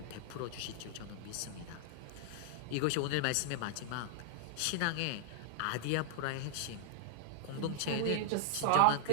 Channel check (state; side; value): different; both; correlation -0.01